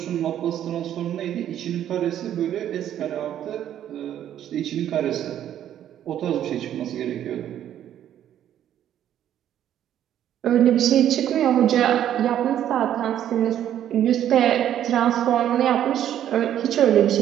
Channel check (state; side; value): quieter; left; 10.9 dB